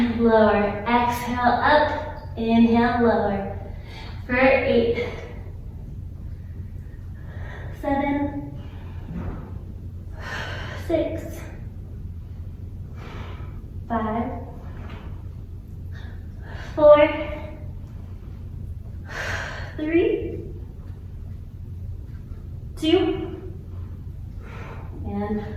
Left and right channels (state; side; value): identical; both; correlation 1.00